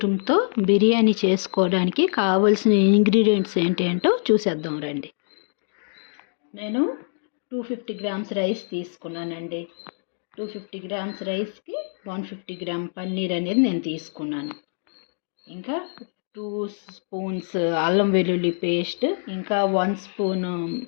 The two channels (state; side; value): silent; right; digital silence